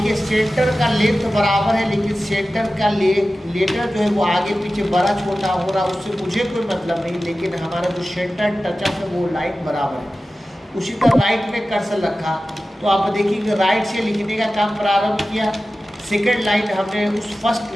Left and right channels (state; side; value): normal; both; correlation 0.95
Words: सेंटर का लेंथ बराबर है, लेकिन सेंटर का लेटर जो है वो आगे पीछे बड़ा छोटा हो रहा, उससे मुझे कोई मतलब नहीं, लेकिन हमारा जो सेंटर टचअप है वो लाइन बराबर है। उसी तरह राइट में कर्सर रखा तो आप देखिए राइट से लिखने का काम प्रारंभ किया, सेकेंड लाइन हमने उस फर्स्ट